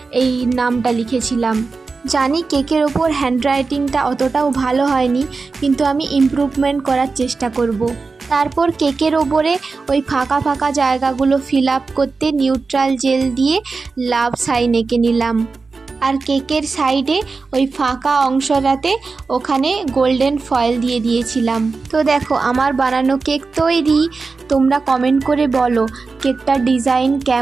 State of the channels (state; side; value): quieter; left; 4.3 dB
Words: এই নামটা লিখেছিলাম। জানি কেকের ওপর হ্যান্ডরাইটিংটা অতটাও ভালো হয়নি, কিন্তু আমি ইমপ্রুভমেন্ট করার চেষ্টা করব। তারপর কেকের ওপরে ওই ফাঁকা ফাঁকা জায়গাগুলো ফিল আপ করতে নিউট্রাল জেল দিয়ে লাভ সাইন এঁকে নিলাম। আর কেকের সাইডে ওই ফাঁকা অংশটাতে ওখানে গোল্ডেন ফয়েল দিয়ে দিয়েছিলাম। তো দেখো আমার বানানো কেক তৈরি। তোমরা কমেন্ট করে বলো কেকটার ডিজাইন